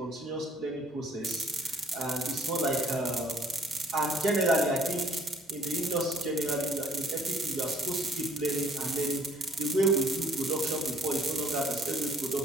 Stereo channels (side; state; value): both; normal; correlation 0.59